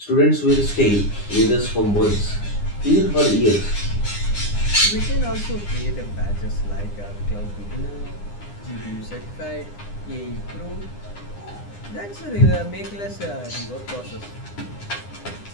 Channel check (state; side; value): late; right; 9.8 ms